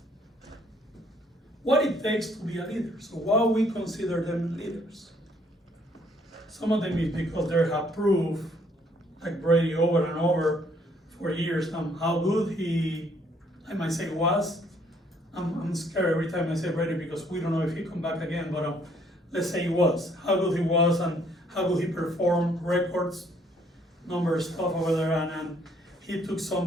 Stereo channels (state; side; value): normal; both; correlation 0.65